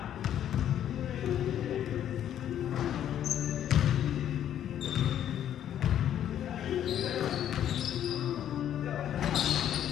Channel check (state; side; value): quieter; right; 10.5 dB